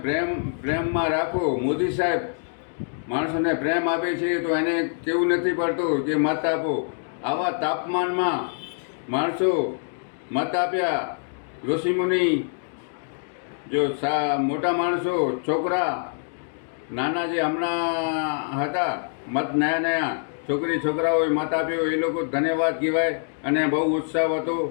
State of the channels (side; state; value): right; silent; digital silence